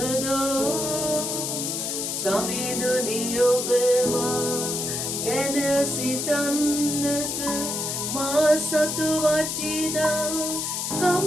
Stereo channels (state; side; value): noise; left; hiss, 2 dB below the sound